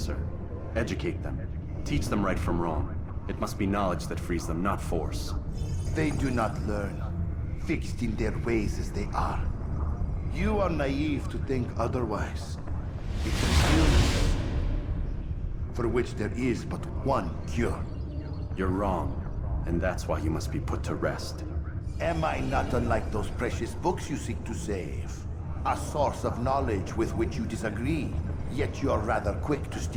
Educate them. Teach them right from wrong. It must be knowledge that frees them, not force. They do not learn. fixed in their ways as they are. You are naive to think otherwise. It's an illness for which there is but one cure. You're wrong, and that's why you must be put to rest. Am I not unlike those precious books you seek to save? A source of knowledge with which you disagree, yet you're rather quick to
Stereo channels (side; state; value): both; identical; correlation 1.00